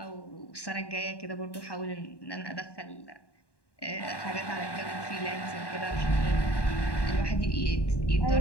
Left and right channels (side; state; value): right; late; 1.1 ms